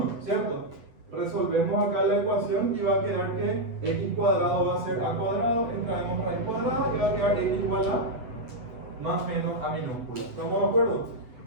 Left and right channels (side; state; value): left; late; 8.6 ms